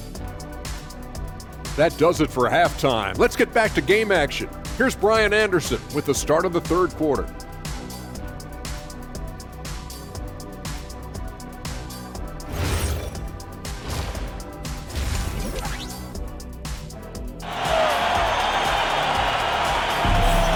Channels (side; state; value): both; identical; correlation 1.00